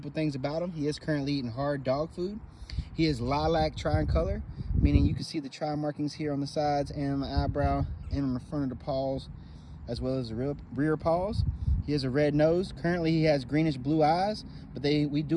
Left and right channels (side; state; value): both; identical; correlation 1.00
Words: things about him. He is currently eating hard dog food. He is lilac tricolor, meaning you can see the tri markings here on the sides and on the eyebrow and on the front of the paws, as well as the rear paws. He has a red nose. Currently, he has greenish blue eyes, but we